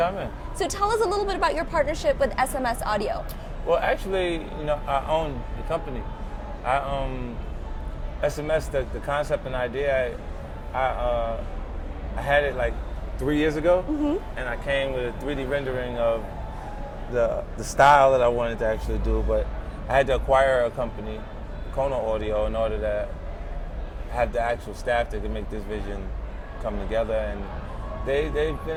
So tell us a little bit about your partnership with SMS Audio. Well, actually, I own the company. SMS, the concept and idea, I had it like 3 years ago, and I came with a 3D rendering of the style that I wanted to actually do, but I had to acquire a company, Kona Audio, in order to have the actual staff that could make this vision come together, and they've been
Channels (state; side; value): identical; both; correlation 1.00